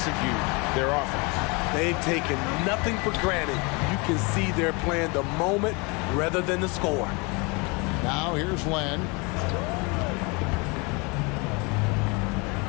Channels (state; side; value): quieter; right; 29.2 dB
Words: their offense. They've taken nothing for granted. You can see they're playing the moment rather than the score. Now here's Len.